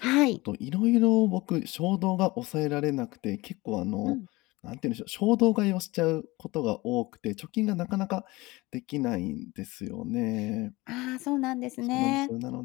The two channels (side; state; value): right; quieter; 21.5 dB